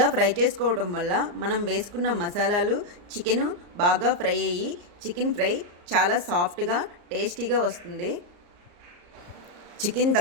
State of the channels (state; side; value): late; left; 34 ms